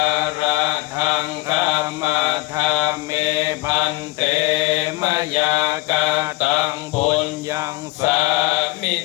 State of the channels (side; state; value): right; quieter; 21.4 dB